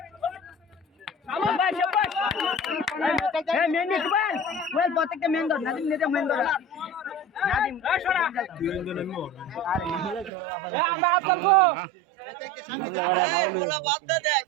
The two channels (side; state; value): left; drops out; at 10.3 s